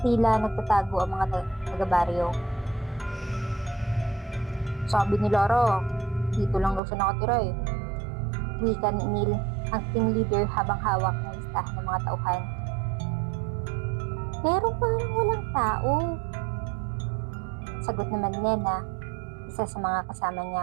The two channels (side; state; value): left; drops out; at 6.8 s